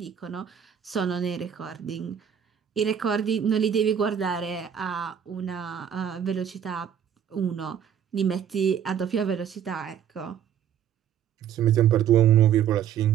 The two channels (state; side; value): quieter; left; 8.9 dB